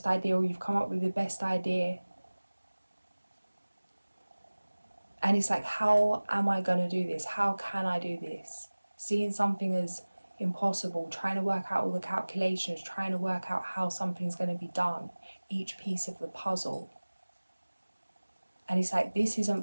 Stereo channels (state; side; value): inverted; both; correlation -1.00